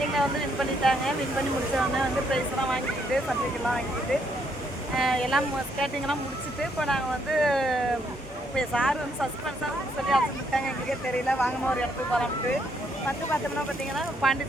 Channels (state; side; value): normal; both; correlation 0.73